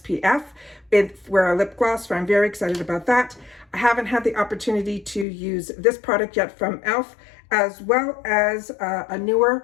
for a lip gloss, so I'm very excited about that. I haven't had the opportunity to use this product yet from e.l.f., as well as a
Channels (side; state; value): right; drops out; at 5.2 s